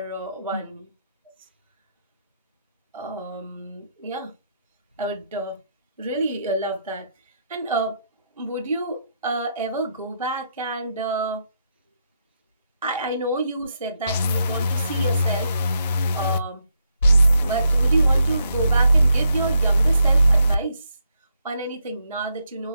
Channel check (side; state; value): both; inverted; correlation -0.79